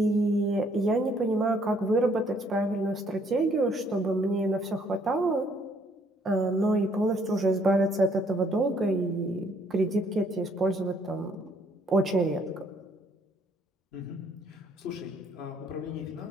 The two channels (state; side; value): normal; both; correlation 0.66